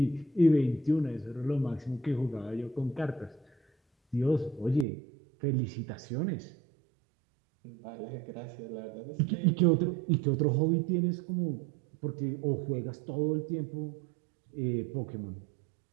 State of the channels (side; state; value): left; drops out; at 4.9 s